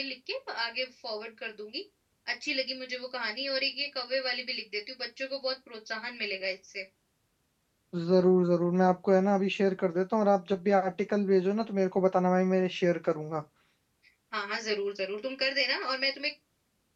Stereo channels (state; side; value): identical; both; correlation 1.00